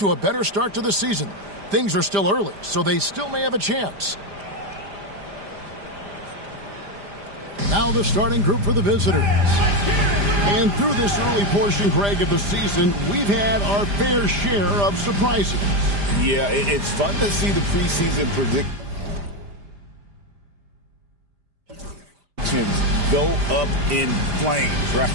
a better start to the season. Things are still early, so they still may have a chance. Now the starting group for the visitors. And through this early portion, Greg, of the season, we've had our fair share of surprises. Yeah, it's fun to see the preseason predictions go up in flames, right?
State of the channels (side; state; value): left; late; 5.0 ms